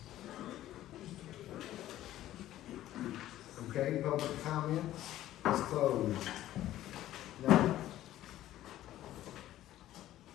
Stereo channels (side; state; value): right; quieter; 13.7 dB